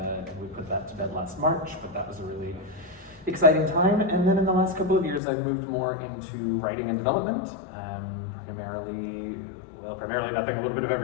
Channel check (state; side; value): drops out; right; at 5.2 s